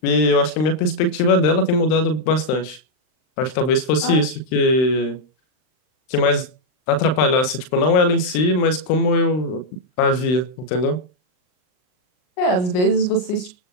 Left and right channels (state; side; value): late; right; 39 ms